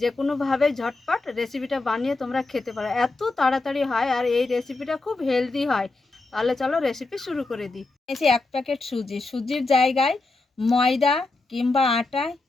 কোনোভাবে ঝটপট রেসিপিটা বানিয়ে তোমরা খেতে পারো। এত তাড়াতাড়ি হয় আর এই রেসিপিটা খুব হেলদি হয়। তাহলে চলো রেসিপি শুরু করে দিই। এই যে 1 প্যাকেট সুজির জায়গায় ময়দা কিংবা আটা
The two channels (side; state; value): right; quieter; 3.4 dB